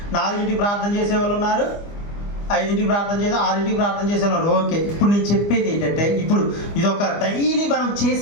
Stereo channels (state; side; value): late; right; 25 ms